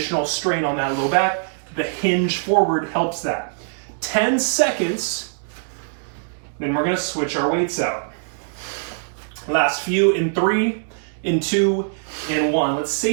strain on that low back. The hinge forward helps that. 10 seconds, then we're going to switch our weights out. Last few in 3, in 2, in 1. Let's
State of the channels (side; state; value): left; silent; digital silence